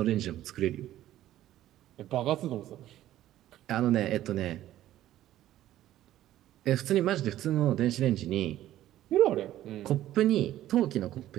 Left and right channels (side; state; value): left; quieter; 13.5 dB